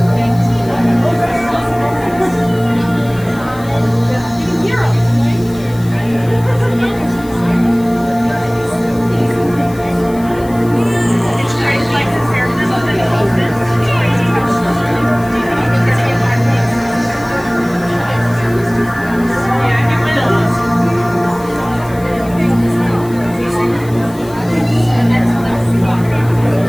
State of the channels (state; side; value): noise; left; hiss, 21 dB below the sound